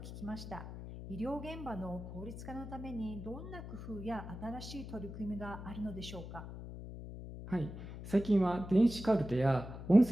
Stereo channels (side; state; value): left; noise; hum, 10 dB below the sound